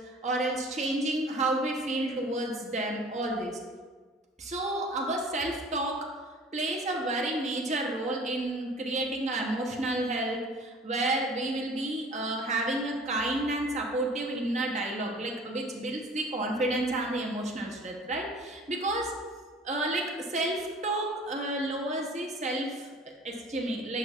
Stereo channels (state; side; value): normal; both; correlation 0.47